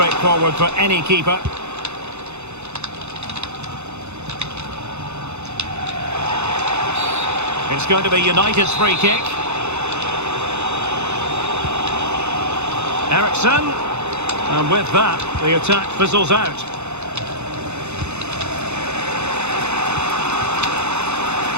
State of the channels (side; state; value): left; late; 0.81 ms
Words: for any keeper. It's going to be United's free kick. Eriksen. And with that, the attack fizzles out.